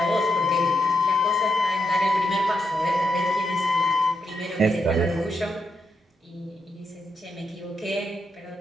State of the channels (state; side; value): normal; both; correlation 0.82